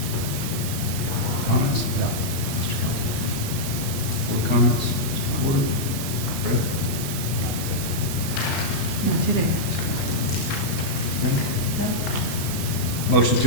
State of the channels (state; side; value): late; right; 36 ms